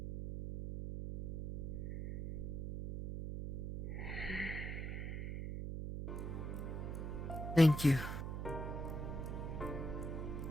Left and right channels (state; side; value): noise; right; hum, 4 dB below the sound